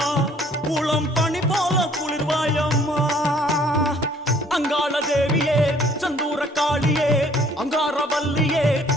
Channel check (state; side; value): normal; both; correlation 0.59